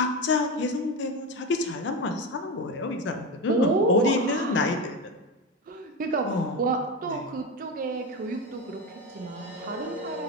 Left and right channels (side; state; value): both; normal; correlation 0.19